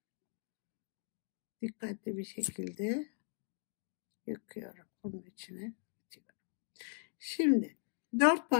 Dikkatli bir şekilde yakıyorum bunun içine. Şimdi 4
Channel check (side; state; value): right; silent; 52 dB below the other